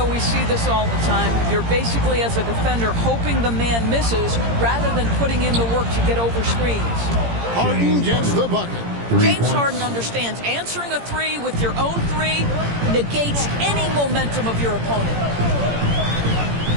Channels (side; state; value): left; late; 17 ms